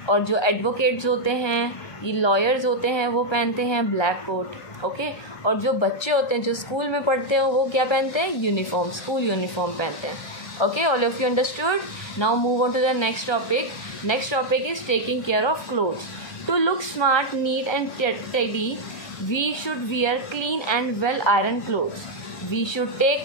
और जो एडवोकेट्स होते हैं, ये लॉयर्स होते हैं, वो पहनते हैं ब्लैक कोट. ओके, और जो बच्चे होते हैं जो स्कूल में पढ़ते हैं वो क्या पहनते हैं? यूनिफॉर्म, स्कूल यूनिफॉर्म पहनते हैं. Okay, all of you understood. Now move on to the next topic. Next topic is taking care of clothes. To look smart, neat and tidy, we should wear clean and well iron clothes. We should take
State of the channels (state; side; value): late; right; 1.3 ms